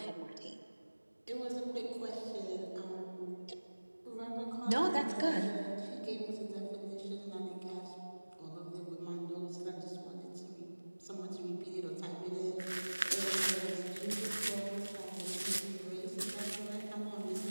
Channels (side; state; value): both; inverted; correlation -1.00